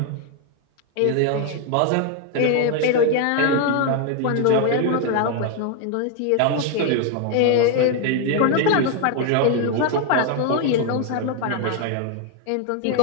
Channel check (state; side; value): different; both; correlation 0.00